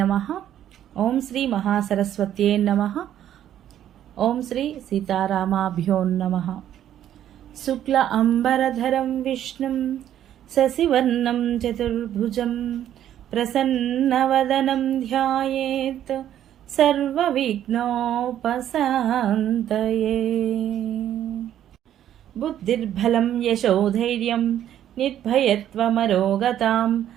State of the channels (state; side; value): quieter; left; 11.1 dB